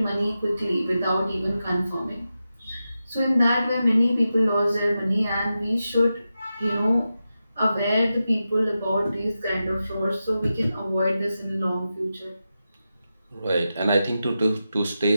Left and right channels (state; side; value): inverted; both; correlation -0.91